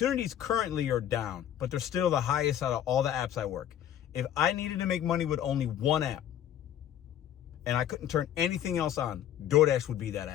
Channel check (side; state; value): right; quieter; 10.8 dB